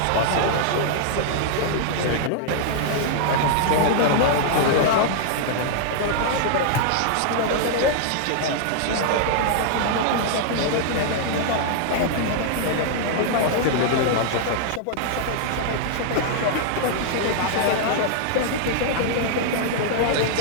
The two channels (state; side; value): different; both; correlation -0.01